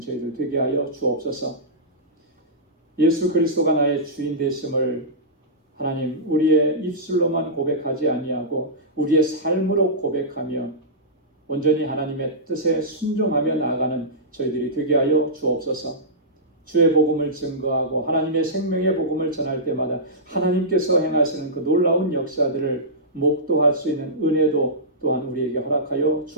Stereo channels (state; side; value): normal; both; correlation -0.16